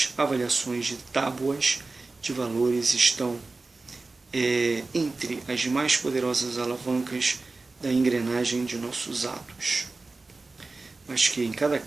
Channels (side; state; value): left; quieter; 3.6 dB